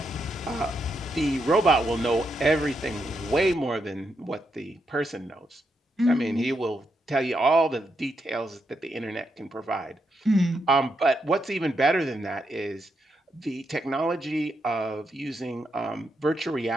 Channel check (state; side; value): normal; both; correlation 0.81